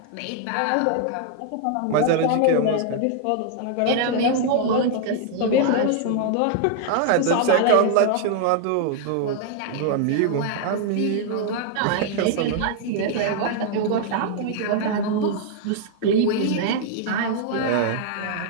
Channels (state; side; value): different; both; correlation 0.00